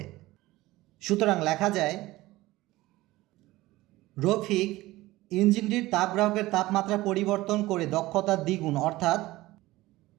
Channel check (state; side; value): quieter; left; 18.2 dB